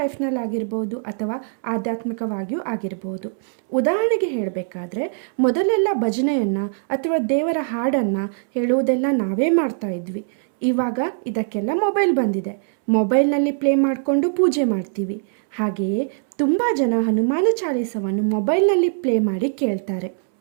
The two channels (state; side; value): silent; left; 65 dB below the other